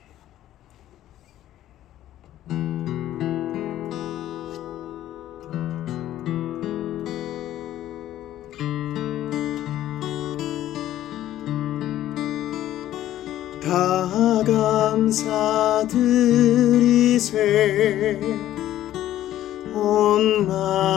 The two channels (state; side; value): quieter; right; 13.0 dB